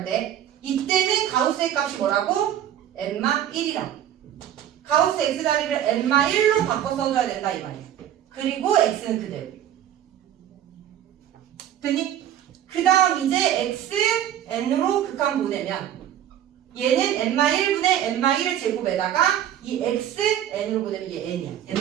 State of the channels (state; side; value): quieter; left; 10.9 dB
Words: 때 이때는 가우스의 값이 뭐라고? n-1이라. 가우스 x 자리를 n-1로 바꿔 써줘야 된다 이 말이야. 그리고 x는 그대로. 됐니? 그 다음 이제 x n으로 극한 보내면 얘는 n-1분의 n-1을 제곱에다가 이 x n으로 보내면 얘 n이야.